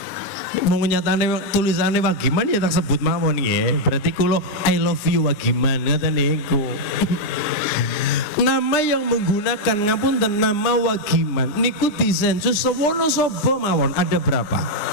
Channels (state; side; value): late; right; 9.7 ms